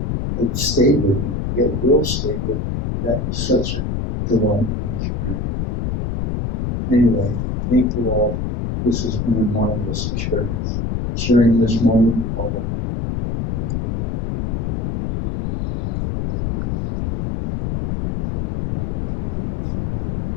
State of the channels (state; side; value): noise; left; rumble, 1 dB below the sound